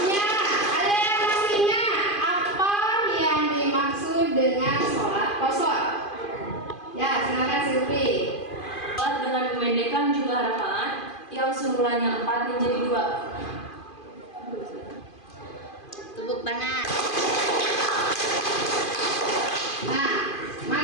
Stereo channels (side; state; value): right; late; 2.5 ms